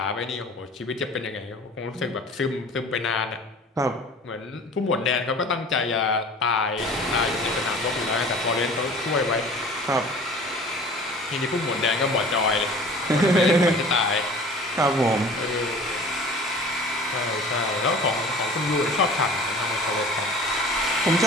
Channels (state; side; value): normal; both; correlation 0.44